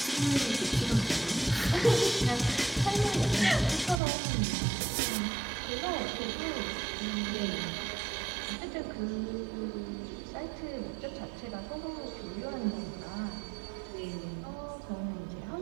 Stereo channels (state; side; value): drops out; left; at 4.0 s